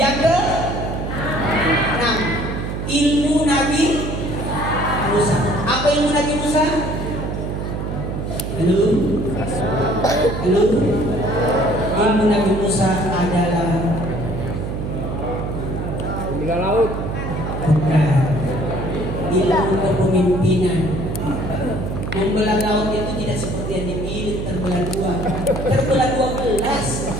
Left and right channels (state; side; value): noise; right; hum, 4 dB below the sound